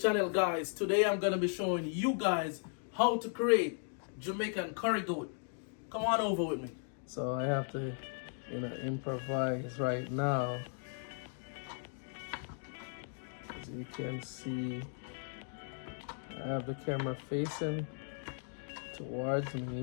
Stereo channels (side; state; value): right; silent; 53 dB below the other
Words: guys. Today I'm gonna be showing you guys how to create Jamaican curry goat. Come on over with me. So I have to, improvise right now. As you can see, I have the camera facing towards